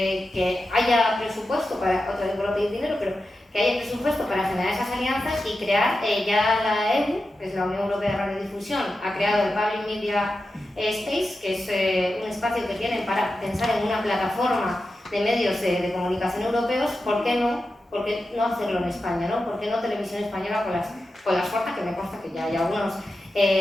haya presupuesto para, otra vez por pedir dinero, pero que haya presupuesto para generar esas alianzas y crear ya la EU, que es la Unión Europea de Radiodifusión, ha creado el Public Media Space, que es un espacio que tienen para pensar en una plataforma de medios de comunicación europeos. ¿Por qué no hacerlo en España, ¿no? ¿Por qué no Televisión Española con las fuerzas, que me consta que ya hay algunas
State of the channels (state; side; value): normal; both; correlation 0.91